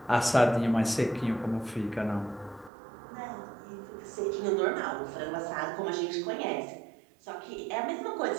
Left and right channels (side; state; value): left; drops out; at 2.7 s